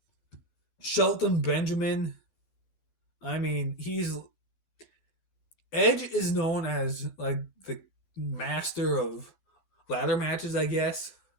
Shelton Benjamin, I mean, he's Edge is known as like the master of ladder matches, I guess.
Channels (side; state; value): right; late; 11 ms